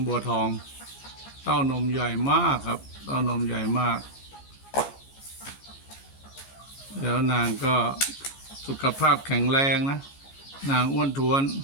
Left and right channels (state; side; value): late; right; 14 ms